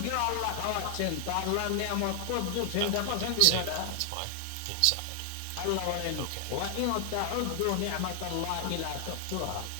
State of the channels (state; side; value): different; both; correlation 0.00